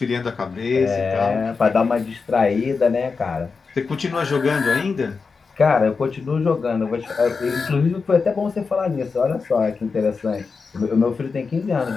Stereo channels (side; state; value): right; quieter; 4.9 dB